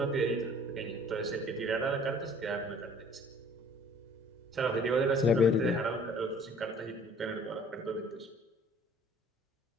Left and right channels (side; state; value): both; normal; correlation 0.53